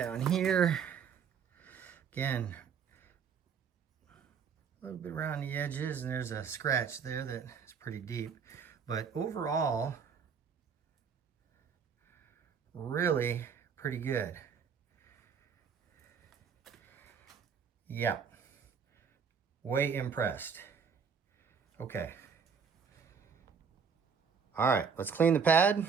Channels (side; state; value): left; quieter; 6.5 dB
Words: here. Again, a little bit around the edges, and there's a scratch there that is pretty deep. But overall, really pretty good. Yeah, way impressed. Okay. All right, let's clean the pad.